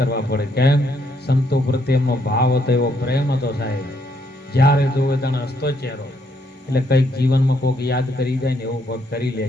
પડે. કેમ? સંતો પ્રત્યે એમનો ભાવ હતો, એવો પ્રેમ હતો સાહેબ. જ્યારે જોવે તને હસતો ચહેરો, એટલે કઈક જીવનમાં કોઈક યાદ કરી જાય ને એવું કોઈક કરી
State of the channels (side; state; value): both; normal; correlation 0.73